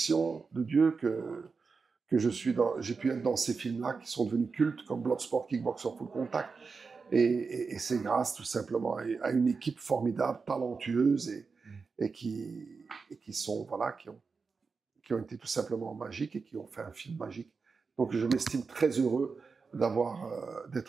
de Dieu que j'ai pu être dans ces films-là qui sont devenus cultes comme Bloodsport, Kickboxer, Full Contact. Et c'est grâce tout simplement à une équipe formidable, talentueuse et qui sont, voilà, qui ont été tout simplement magiques et qui ont fait un film magique. Donc je m'estime très heureux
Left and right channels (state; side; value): quieter; left; 4.8 dB